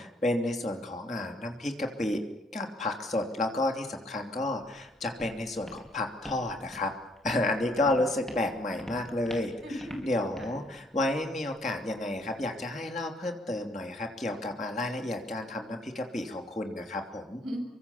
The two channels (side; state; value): both; normal; correlation 0.66